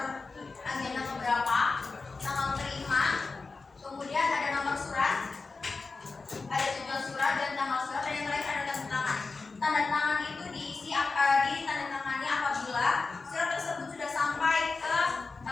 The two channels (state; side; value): quieter; right; 4.1 dB